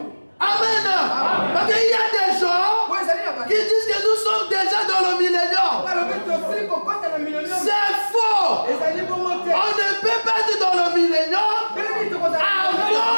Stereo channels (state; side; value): inverted; both; correlation -1.00